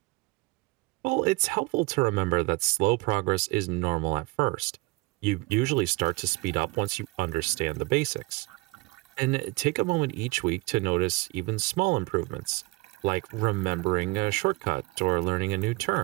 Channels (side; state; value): left; quieter; 25.5 dB